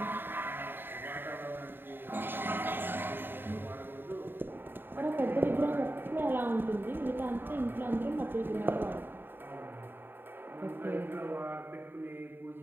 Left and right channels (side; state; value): left; late; 0.097 ms